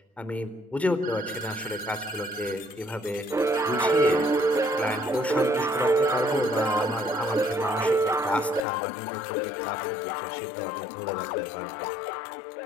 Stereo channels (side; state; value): right; drops out; at 8.7 s